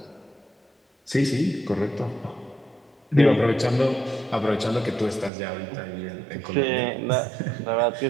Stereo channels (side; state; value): left; drops out; at 5.3 s